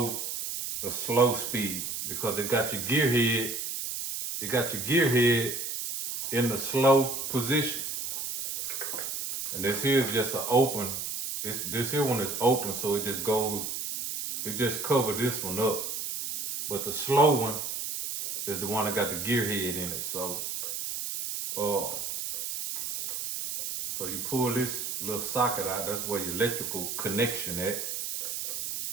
speed because it got your gear head. It got your gear head in the slow position. And this here is just an open. This here one is open, so it just covers this one up. But the slow one is the one that got the gear head in it. So you pull this little socket out. That's where your electrical connection at.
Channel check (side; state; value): right; noise; hiss, 4 dB below the sound